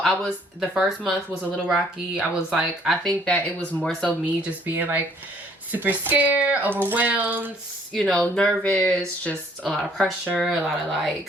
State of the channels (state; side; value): normal; both; correlation 0.61